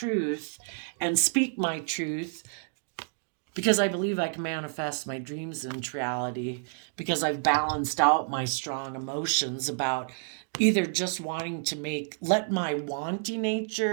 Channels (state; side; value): silent; left; digital silence